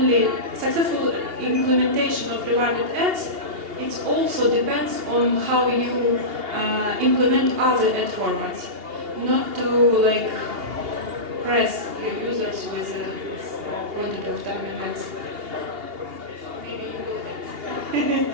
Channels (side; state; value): left; late; 2.8 ms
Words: successful implementation of rewarded ads, it also depends on how you implement other ad formats. Not to press your users with a quantity of time and ads.